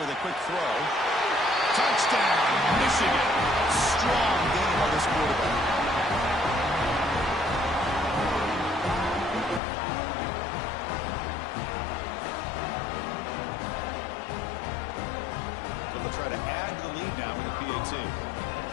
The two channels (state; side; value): drops out; right; at 9.6 s